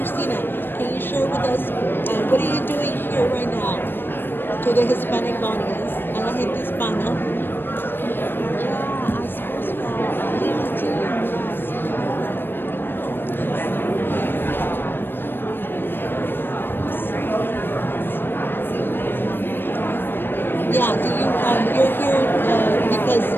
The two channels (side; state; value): right; late; 0.098 ms